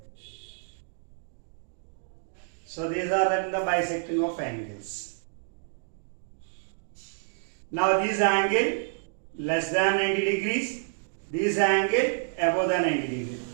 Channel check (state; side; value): silent; left; digital silence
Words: So these are the bisecting of angles. Now this angle less than 90 degrees, this angle above the 90 degrees.